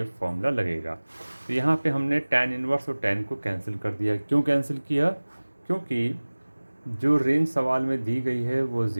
फॉर्मूला लगेगा। तो यहाँ पे हमने tan इनवर्स और tan को कैंसिल कर दिया। क्यों कैंसिल किया? क्योंकि जो रेंज सवाल में दी गई है वो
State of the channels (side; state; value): both; inverted; correlation -1.00